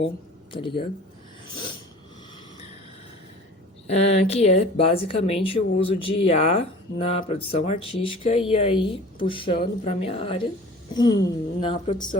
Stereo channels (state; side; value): normal; both; correlation 0.43